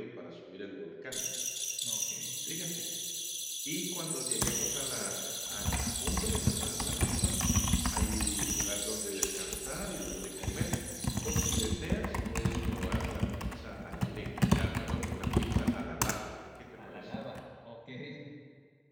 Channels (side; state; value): both; identical; correlation 1.00